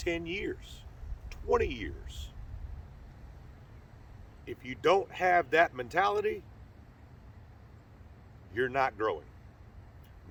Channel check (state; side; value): identical; both; correlation 1.00